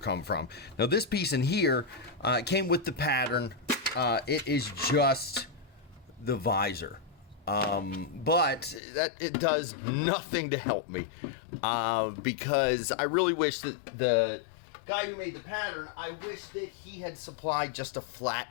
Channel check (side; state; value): right; drops out; at 8.8 s